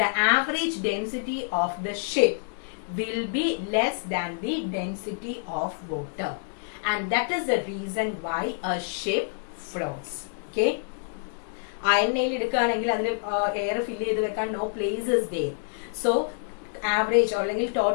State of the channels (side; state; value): right; silent; digital silence